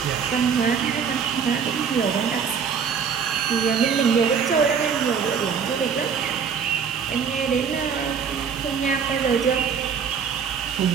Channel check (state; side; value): quieter; left; 6.7 dB